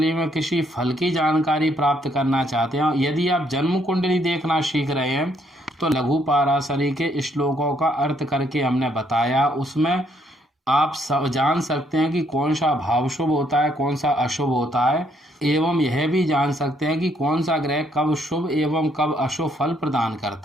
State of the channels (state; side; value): normal; both; correlation 0.70